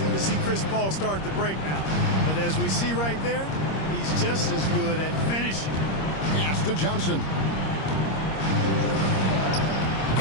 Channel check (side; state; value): right; late; 26 ms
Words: to see Chris Paul start the break now. But as we see right there, he's just as good at finishing. Pass to Johnson.